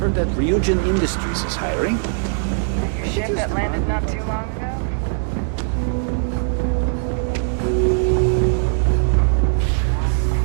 heard that Ryujin Industries is hiring. That your ship that landed not too long ago? Just one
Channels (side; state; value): left; silent; digital silence